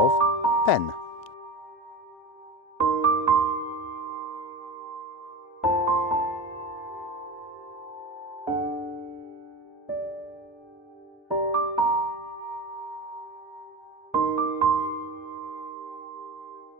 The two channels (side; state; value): both; normal; correlation 0.29